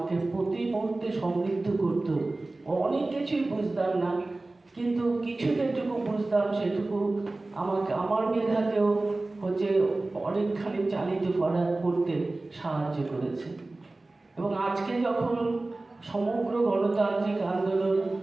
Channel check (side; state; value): left; quieter; 3.0 dB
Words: প্রতি মুহূর্তে সমৃদ্ধ করত। অনেক কিছুই বুঝতাম না, কিন্তু কিছু যেটুকু বুঝতাম সেটুকু আমার মেধাকেও অনেকখানি চালিত করতে সাহায্য করেছে। এবং আজকে যখন সমগ্র গণতান্ত্রিক আন্দোলন